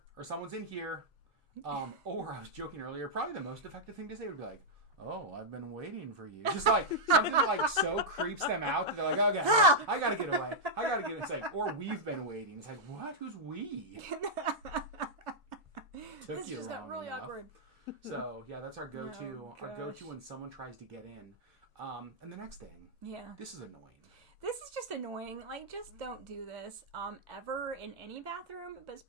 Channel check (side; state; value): both; normal; correlation -0.06